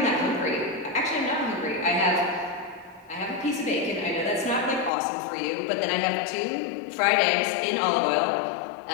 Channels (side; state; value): right; drops out; at 4.9 s